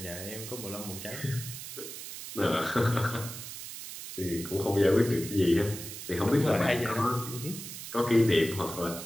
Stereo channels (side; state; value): right; noise; hiss, 10 dB below the sound